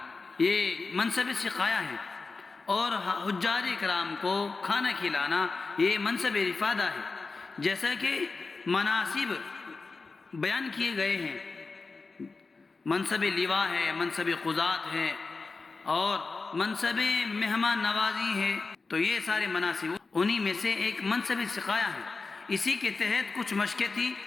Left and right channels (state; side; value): quieter; right; 4.1 dB